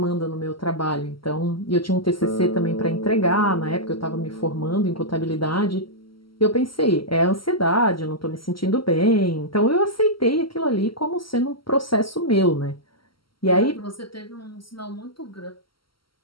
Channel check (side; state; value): right; late; 0.74 ms